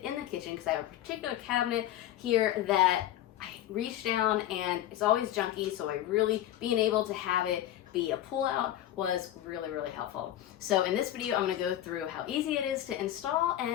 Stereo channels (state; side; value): quieter; right; 12.7 dB